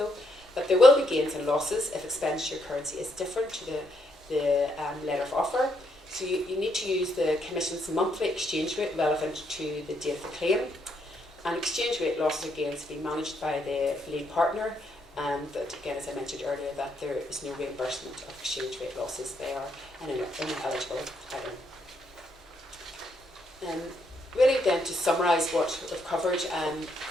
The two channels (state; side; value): normal; both; correlation 0.75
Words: but there will be gains and losses if expenditure currency is different to the letter of offer. So you need to use the Commission's monthly exchange rate relevant to the date of the claim, and exchange rate losses or gains to be managed by the lead partner. But again, as I mentioned earlier, that there is no reimbursement of exchange rate losses. They are an ineligible item. Really then, to summarise what we've